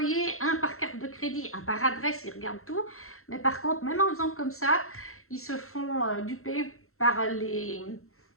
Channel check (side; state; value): right; late; 0.62 ms